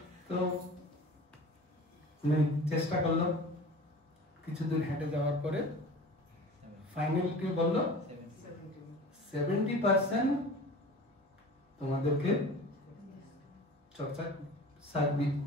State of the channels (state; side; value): normal; both; correlation 0.39